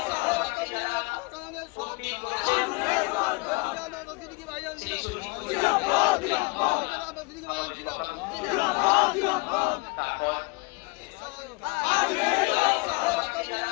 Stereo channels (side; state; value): right; quieter; 27.6 dB